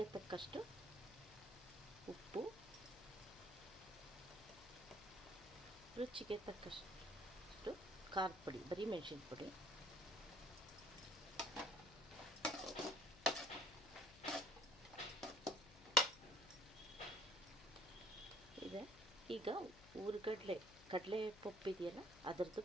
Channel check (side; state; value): left; noise; hum, 19 dB below the sound